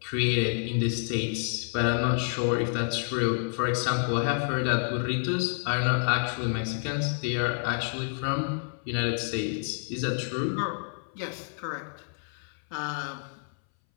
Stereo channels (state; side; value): silent; right; 59 dB below the other